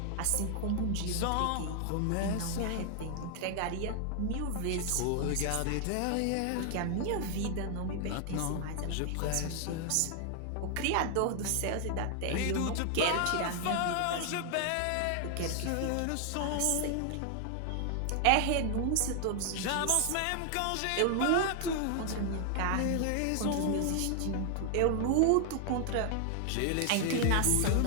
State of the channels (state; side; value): different; both; correlation 0.00